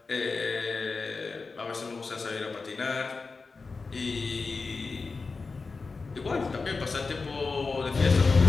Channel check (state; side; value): quieter; right; 4.3 dB